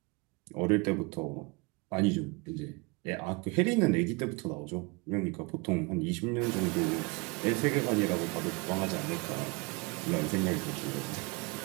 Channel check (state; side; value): quieter; left; 28.5 dB